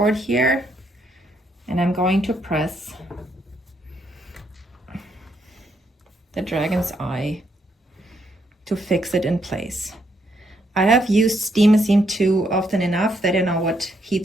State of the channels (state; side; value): normal; both; correlation 0.75